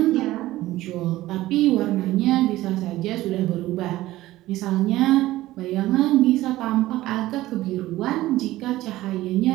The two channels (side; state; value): left; quieter; 16.3 dB